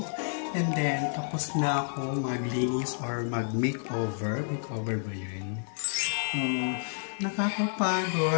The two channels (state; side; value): silent; right; digital silence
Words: And then, tapos na ako maglinis or mag-makeover. Makeover ba yun?